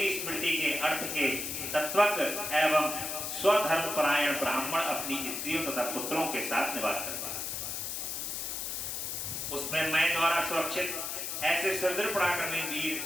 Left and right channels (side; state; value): left; noise; hiss, 4 dB below the sound